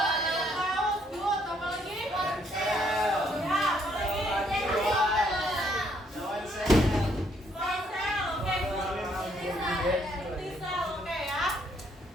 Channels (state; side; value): normal; both; correlation 0.69